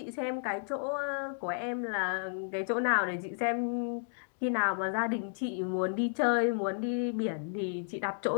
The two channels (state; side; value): silent; right; digital silence